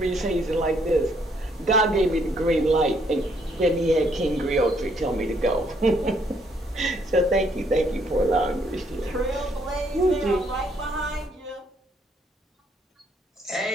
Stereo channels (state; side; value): normal; both; correlation 0.69